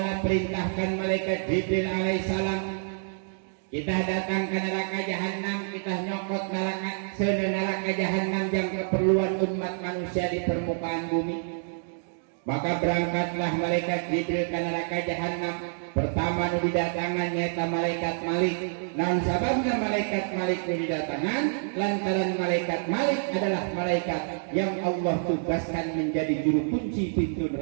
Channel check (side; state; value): left; silent; digital silence